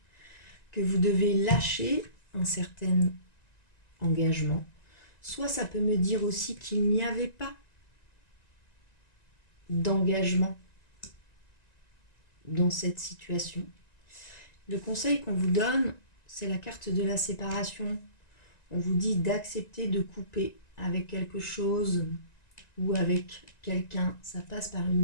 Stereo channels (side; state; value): right; late; 1.9 ms